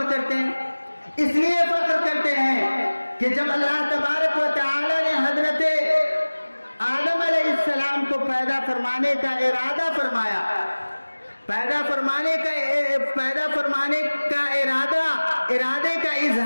کرتے ہیں؟ اس لیے فخر کرتے ہیں کہ جب اللہ تبارک و تعالیٰ نے حضرت آدم علیہ السلام کو پیدا فرمانے کا ارادہ فرمایا، پیدا فرمانے کا ارادے کا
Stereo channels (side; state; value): both; inverted; correlation -1.00